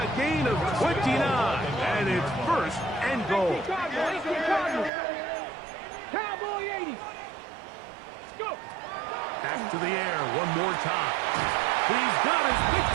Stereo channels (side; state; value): left; drops out; at 4.9 s